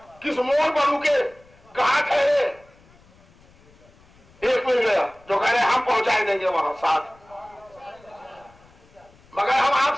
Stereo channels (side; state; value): left; noise; rumble, 28 dB below the sound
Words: किस मोड़ पर रुके, कहां ठहरे, एक मिल गया जो कह रहे हम पहुंचाए देंगे वहां साथ, मगर हम